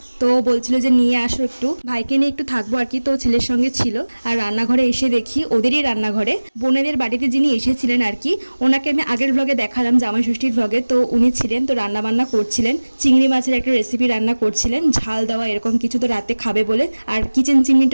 তো বলছিল যে নিয়ে আসো একটু, ভাইকে নিয়ে একটু থাকবো আর কি। তো ছেলের সঙ্গে ছিল। আর রান্নাঘরে এসে দেখি ওদেরই রান্নাঘরে বোনেদের বাড়িতে যিনি এসেছিলেন আর কি, ওনাকে আমি আগের ব্লগে দেখালাম, জামাই ষষ্ঠীর ব্লগে। তো উনি ছিলেন, তো রান্না বান্না করছিলেন, চিংড়ি মাছের একটা রেসিপি রান্না করছিলেন, ঝাল দেওয়া এরকম কিছু, তো রাতে খাবে বলে। আর কিচেন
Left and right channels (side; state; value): both; inverted; correlation -1.00